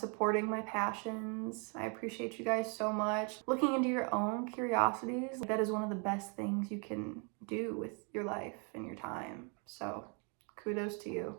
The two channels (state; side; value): quieter; left; 36.6 dB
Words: my passions. I appreciate you guys so much. Looking into your own curiosities, that is one of the best things you can do with your life and your time. So kudos to you.